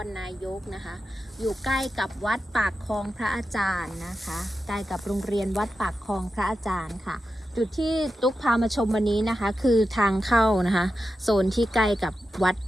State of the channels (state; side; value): normal; both; correlation 0.91